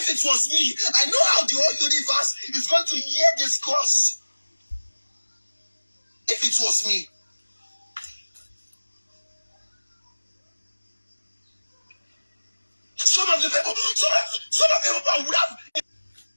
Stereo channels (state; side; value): inverted; both; correlation -1.00